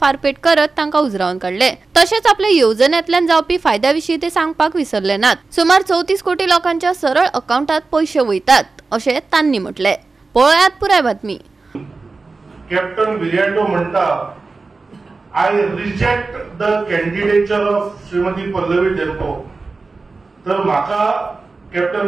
फारपेट करत तांकां उजरावन काढले। तशेंच आपल्या येवजण्यांतल्यान जावपी फायद्याविशीं ते सांगपाक विसरले नात। सुमार 34 कोटी लोकांच्या सरळ अकाउंटात पैसे वयतात अशें तांणी म्हटले। पळयात पुराय बातमी। कॅप्टन विराटो म्हणटा I reject the candidature of Shrimati Pallavi डेल्पो। तर म्हाका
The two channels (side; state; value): left; quieter; 3.9 dB